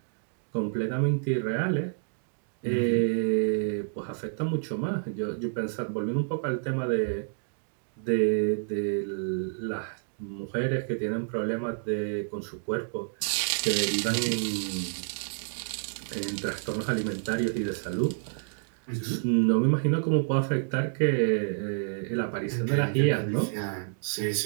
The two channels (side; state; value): left; silent; digital silence